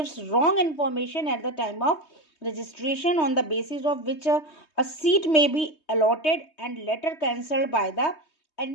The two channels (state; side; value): late; right; 3.2 ms